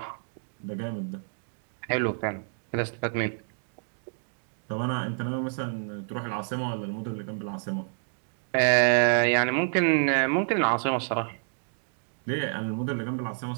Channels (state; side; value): silent; left; digital silence